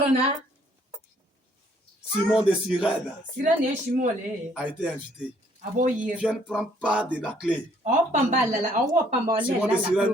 Simon de Cyrène a été invité. Viens prendre part de la clé. Simon de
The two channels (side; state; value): both; normal; correlation 0.64